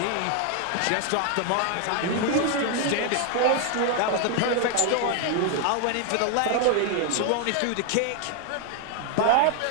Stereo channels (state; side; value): different; both; correlation 0.00